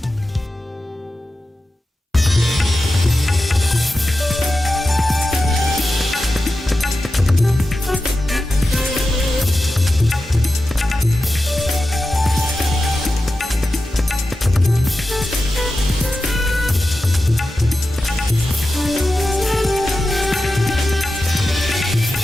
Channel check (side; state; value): both; normal; correlation 0.92